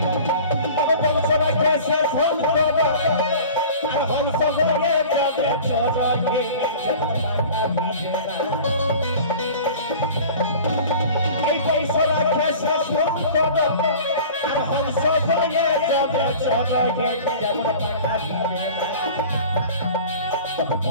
তবে বংশরা কেসে ফোন করো আর হংস হয়ে যাবে চোখে যেমন মাথা ভিজে না এই বংশরা কেসে ফোন করো আর হংস হয়ে যাবে চোখে যেমন মাথা ভিজে না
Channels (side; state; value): both; inverted; correlation -0.41